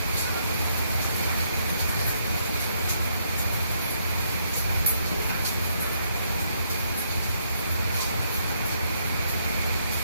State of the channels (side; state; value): both; inverted; correlation -0.73